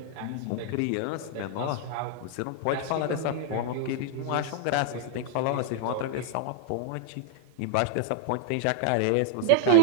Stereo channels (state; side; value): different; both; correlation -0.01